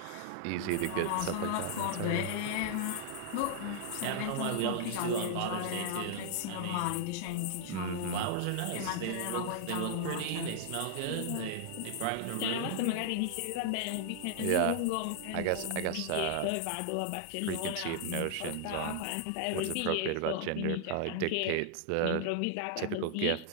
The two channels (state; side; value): different; both; correlation 0.00